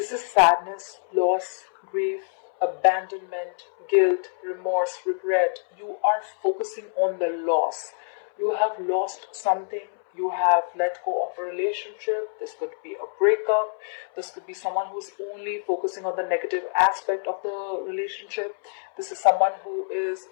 is sadness, loss, grief, abandonment, guilt, remorse, regret. You are focusing on the loss. You have lost something. You have let go of a relationship. This could be a breakup. This could be someone who's only focusing on the negative aspect of the relationship. This is someone who is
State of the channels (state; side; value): silent; right; 61 dB below the other